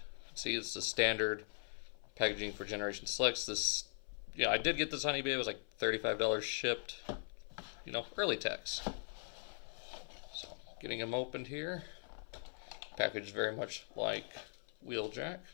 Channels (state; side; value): silent; right; 51 dB below the other